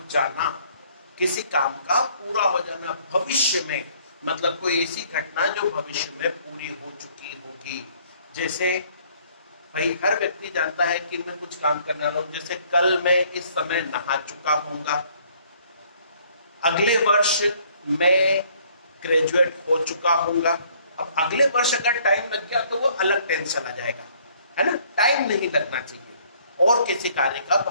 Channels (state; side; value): inverted; both; correlation -0.61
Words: जाना, किसी काम का पूरा हो जाना भविष्य में, मतलब कोई ऐसी घटना जो भविष्य में पूरी हो चुकी होगी। जैसे भाई हर व्यक्ति जानता है कि मैं कुछ काम करने वाला हूं, जैसे कल मैं इस समय नहा चुका हूंगा, अगले वर्ष मैं ग्रेजुएट हो चुका हूंगा। अब अगले वर्ष अगर टाइम लग गया तो वो अलग टेंस चला जाएगा, है ना। टाइम नहीं लगना चाहिए। और किसी कार्य का